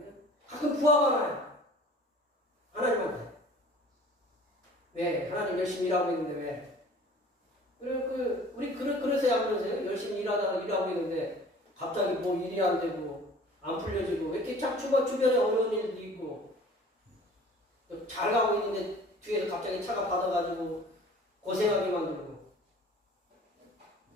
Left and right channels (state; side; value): normal; both; correlation 0.47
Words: 가끔 부하가 나요. 하나님한테 왜 하나님 열심히 일하고 있는데 왜 우리 그러세요 안 그러세요? 열심히 일하고 있는데 갑자기 뭐 일이 안 되고 안 풀려지고 왜 이렇게 참 주변에 어려운 일도 있고 잘 가고 있는데 뒤에서 갑자기 차가 받아가지고 고생하게 만들고